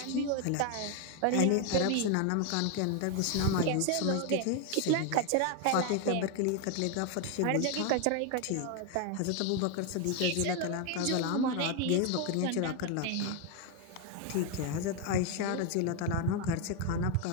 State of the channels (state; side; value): different; both; correlation 0.01